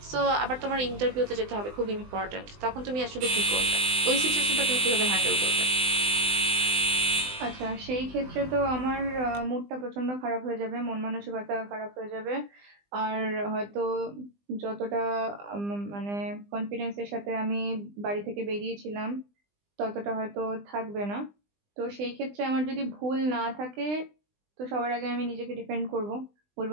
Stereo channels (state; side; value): late; left; 20 ms